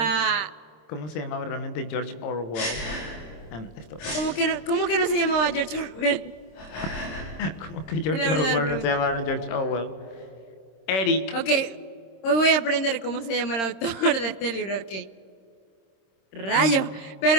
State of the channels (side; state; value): right; late; 26 ms